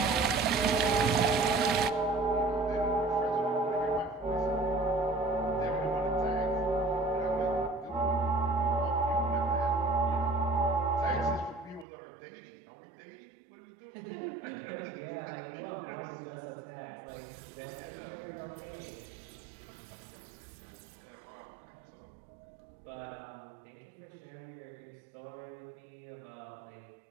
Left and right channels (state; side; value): drops out; left; at 11.9 s